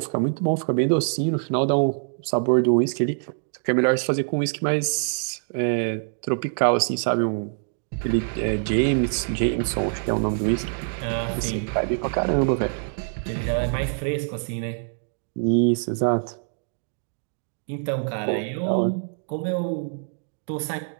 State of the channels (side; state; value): left; silent; digital silence